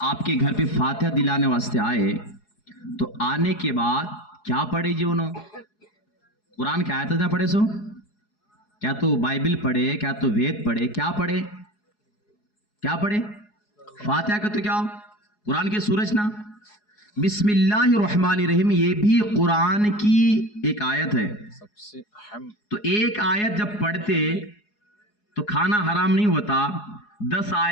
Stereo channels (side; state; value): right; late; 4.8 ms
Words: आपके घर पे फातिहा दिलाने वास्ते आए, तो आने के बाद क्या पढ़े जी? उन्होंने कुरान की आयत ना पढ़े, सो क्या तो बाइबल पढ़े, क्या तो वेद पढ़े, क्या पढ़े? क्या पढ़े? फातिहा का तो क्या, कुरान की सूरज ना, बिस्मिल्लाहिर्रहमानिर्रहीम, ये भी कुरान की एक आयत है। सबसे अहम, तो एक आयत जब पढ़ते तो खाना हराम नहीं होता। 10